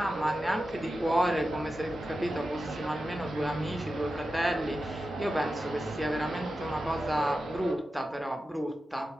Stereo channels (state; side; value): normal; both; correlation 0.92